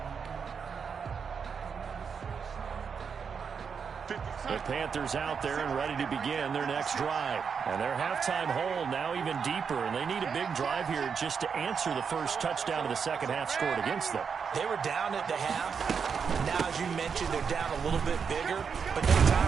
The Panthers out there and ready to begin their next drive. And their halftime hole now even deeper, and they need a big drive here just to answer the first touchdown of the second half scored against them. They were down at the half. Now, as you mentioned, they're down a little bit bigger, but no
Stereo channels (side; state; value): left; quieter; 6.3 dB